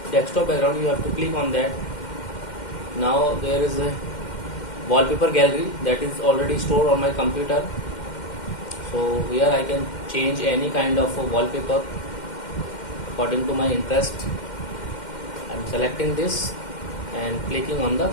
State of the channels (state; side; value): late; right; 2.1 ms